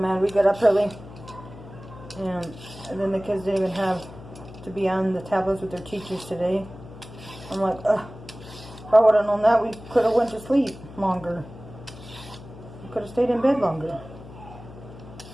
We got up early. And then the kids didn't even have to be on the tablets with their teachers today. I'm like, ugh. If I would have known that, we could have went to sleep longer. We could have stayed in bed longer.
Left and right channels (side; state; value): left; noise; hum, 16 dB below the sound